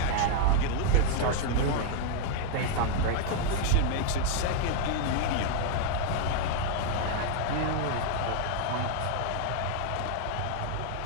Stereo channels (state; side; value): different; both; correlation 0.00